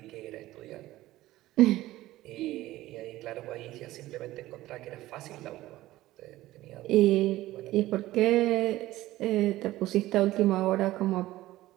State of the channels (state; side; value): quieter; left; 16.3 dB